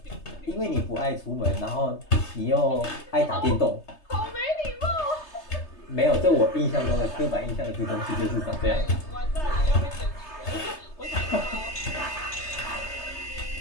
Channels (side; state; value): right; late; 3.3 ms